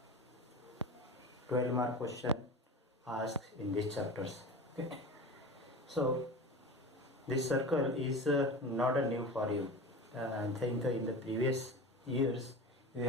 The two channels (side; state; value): both; normal; correlation 0.31